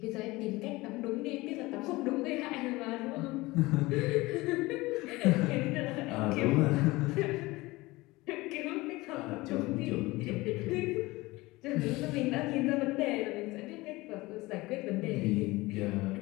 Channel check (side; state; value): right; quieter; 20.9 dB